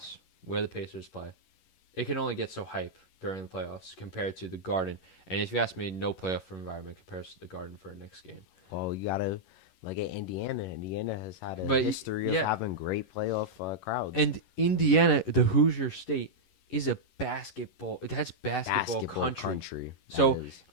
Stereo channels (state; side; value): late; right; 11 ms